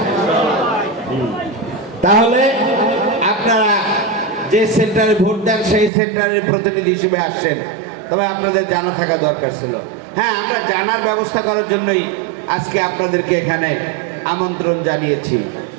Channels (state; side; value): drops out; left; at 5.9 s